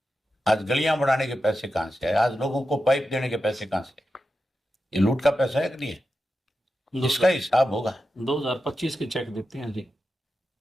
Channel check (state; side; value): normal; both; correlation 0.90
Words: आज गलियां बढ़ाने के पैसे कहां से आए? आज लोगों को पाइप देने के पैसे कहां से आए? ये लूट का पैसा है कि नहीं है? इसका हिसाब होगा। 2025 के चेक देते हैं जी।